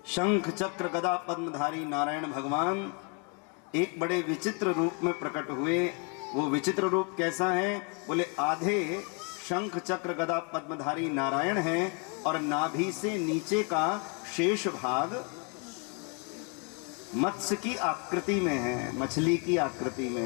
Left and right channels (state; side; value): quieter; right; 36.0 dB